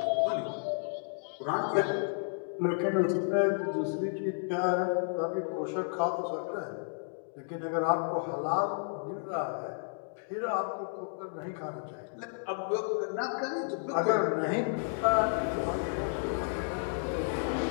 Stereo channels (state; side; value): silent; right; digital silence